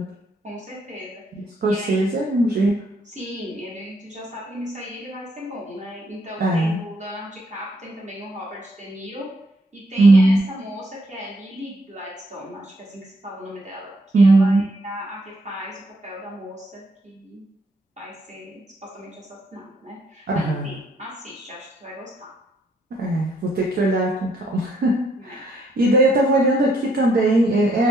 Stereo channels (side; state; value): both; normal; correlation 0.72